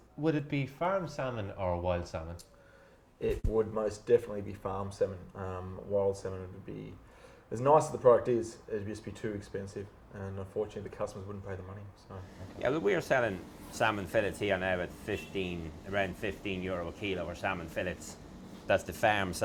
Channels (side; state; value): both; identical; correlation 1.00